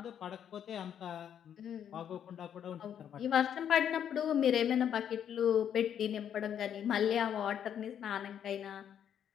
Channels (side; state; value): right; quieter; 9.1 dB